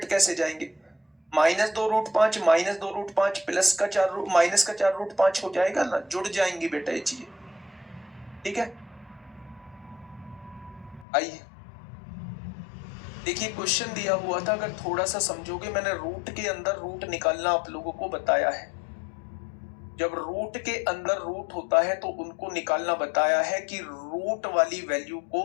कैसे जाएंगे? -2√5 -2√5 प्लस का 4 माइनस का 4√5 हो जाएगा ना, जुड़ जाएंगी बेटा ये चीजें। ठीक है, आइए देखिए, क्वेश्चन दिया हुआ था, अगर थोड़ा सा समझोगे, मैंने रूट के अंदर रूट निकालना आप लोगों को बताया है। जब रूट के अंदर रूट होता है तो उनको निकालना बताया है कि रूट वाली वैल्यू को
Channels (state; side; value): drops out; right; at 11.1 s